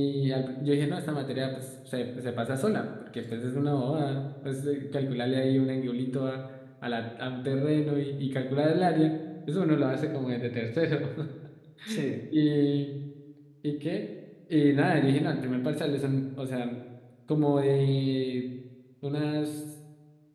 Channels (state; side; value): identical; both; correlation 1.00